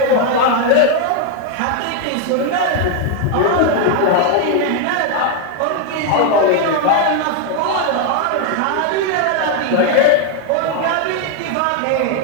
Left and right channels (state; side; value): different; both; correlation 0.00